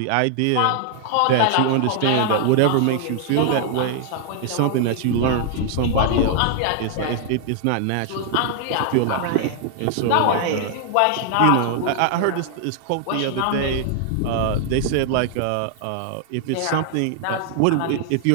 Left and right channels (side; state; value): both; different; correlation 0.00